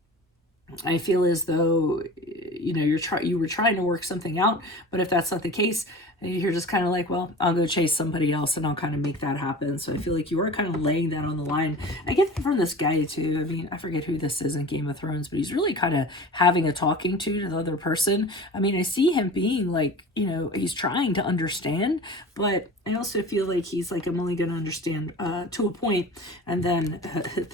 I feel as though, you know, you were trying to work something out, but if that's not the case, you're just kind of like, well, I'll go chase somebody else and I'll kind of make that happen. So I feel like you are kind of laying that on the line. I get that from this guy too. I mean, I forget who this is in Game of Thrones, but he's really kind of having a talking to the other person. I mean, I see him being like, you know, he's trying to understand, but I also feel like he's like, I'm only going to understand to a point, and then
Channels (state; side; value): normal; both; correlation 0.37